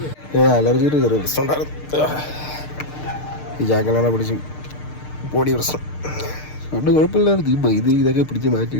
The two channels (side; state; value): right; late; 6.6 ms